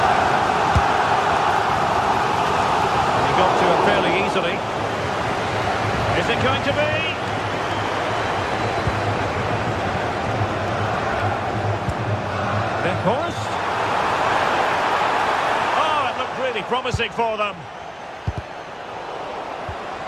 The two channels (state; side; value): identical; both; correlation 1.00